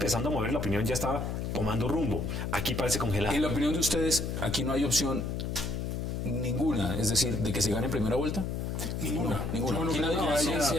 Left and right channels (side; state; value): left; noise; hum, 3 dB below the sound